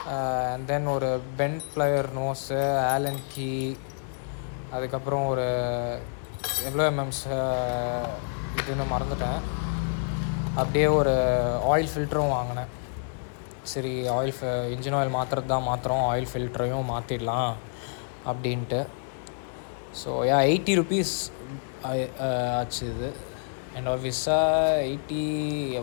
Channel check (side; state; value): right; silent; 60 dB below the other